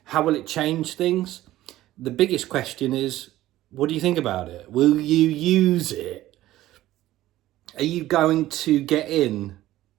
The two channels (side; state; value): left; quieter; 15.1 dB